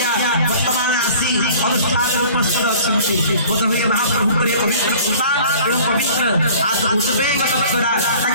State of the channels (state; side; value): inverted; both; correlation -0.47